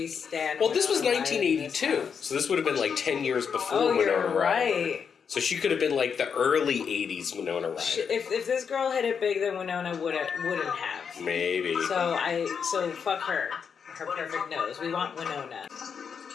stand Well, this was 1982, so this would have been, like, 10 years before Winona Ryder. Right. So she could have been, like, the early 80s Winona Ryder. If this girl hit it big, then Winona wouldn't have. Maybe. So fuck her. Her perfect nose. We want Winona.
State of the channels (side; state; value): right; quieter; 6.6 dB